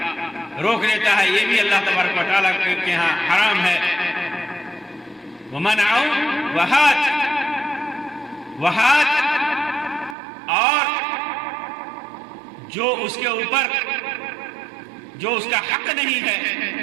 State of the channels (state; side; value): drops out; left; at 10.2 s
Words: روک لیتا ہے، یہ بھی اللہ تبارک و تعالیٰ کے ہاں حرام ہے۔ ومنع وہات اور جو اس کے اوپر جو اس کا حق نہیں ہے